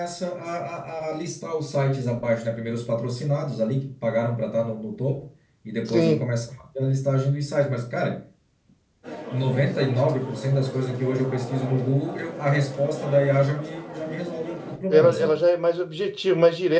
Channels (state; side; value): identical; both; correlation 1.00